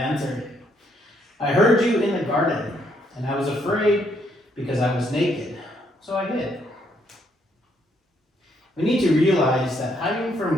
I heard you in the garden, and I was afraid because I was naked, so I hid. We need to realize that hiding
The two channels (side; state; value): both; normal; correlation 0.72